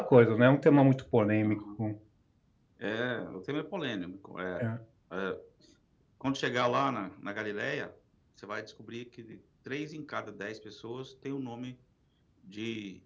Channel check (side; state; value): both; identical; correlation 1.00